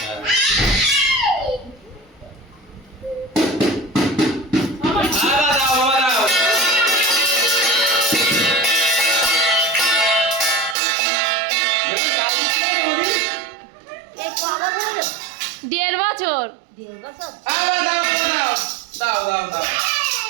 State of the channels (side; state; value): left; drops out; at 10.8 s